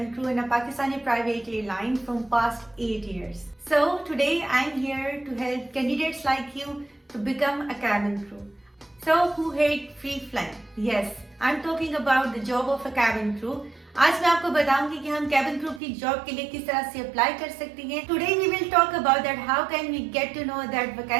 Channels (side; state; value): left; drops out; at 15.8 s